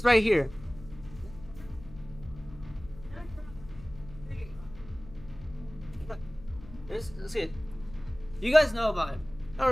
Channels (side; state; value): left; noise; hum, 18 dB below the sound